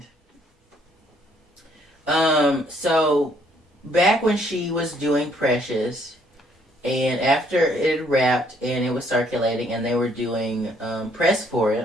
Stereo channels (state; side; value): normal; both; correlation 0.66